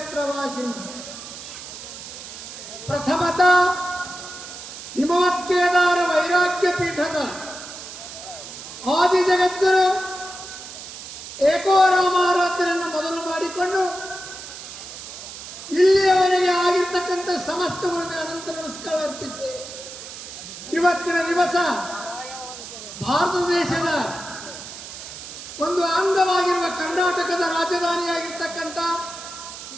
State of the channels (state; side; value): noise; right; hiss, 12 dB below the sound